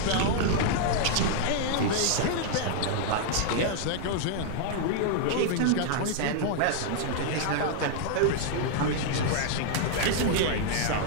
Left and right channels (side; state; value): both; different; correlation -0.01